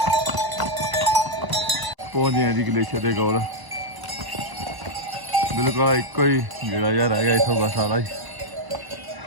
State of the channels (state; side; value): late; left; 1.0 ms